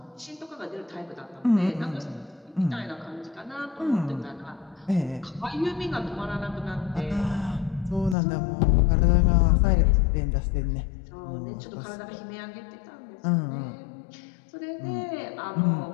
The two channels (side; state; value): right; drops out; at 8.2 s